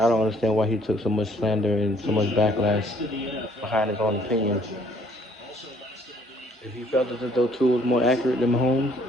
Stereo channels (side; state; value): both; normal; correlation 0.62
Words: don't understand why he took so much slander and so much backlash behind his own opinions. If he felt that though Tua was more accurate than Mahomes,